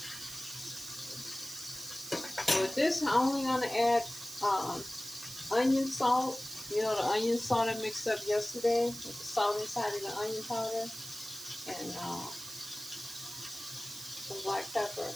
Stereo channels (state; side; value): noise; right; hiss, 11 dB below the sound